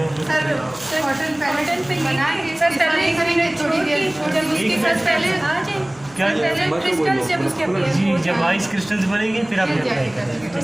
जी, जब आइस क्रिस्टल्स बनेंगे फिर आप अप्लाई करेंगे।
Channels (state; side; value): noise; right; hum, 27 dB below the sound